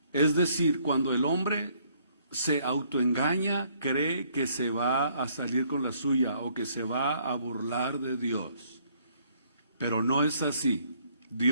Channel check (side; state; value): both; inverted; correlation -0.66